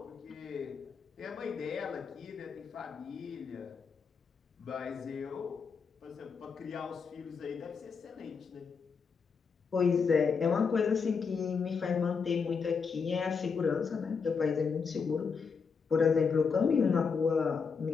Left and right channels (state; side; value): quieter; right; 5.6 dB